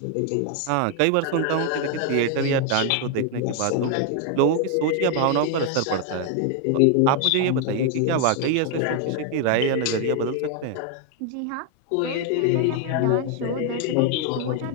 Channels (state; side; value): different; both; correlation 0.00